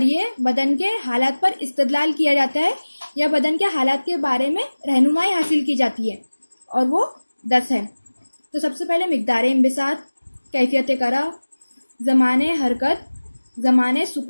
बदन के हालात पर इस्तदलाल किया जाता है या बदन के हालात के बारे में रहनुमाई हासिल की जाती है, और वो 10 है। तो सबसे पहले मिकदार इंबिसात, कैफियत करा, ज़माने हरकत, ज़माने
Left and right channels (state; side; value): inverted; both; correlation -1.00